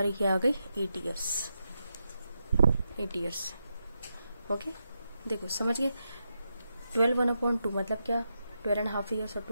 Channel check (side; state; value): both; inverted; correlation -0.86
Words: क्या आ गई, 8 ईयर्स। ओके, देखो समझ गए। 12/1/2 मतलब क्या, 12.5 ईयर्स, और